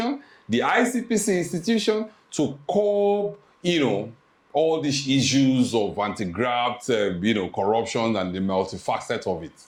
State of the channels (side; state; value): both; identical; correlation 1.00